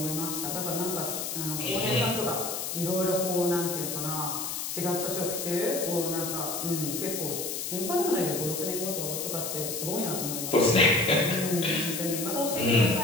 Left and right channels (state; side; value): noise; left; hiss, 4 dB below the sound